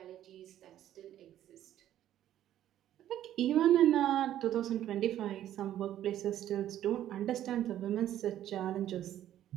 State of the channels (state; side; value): quieter; left; 12.0 dB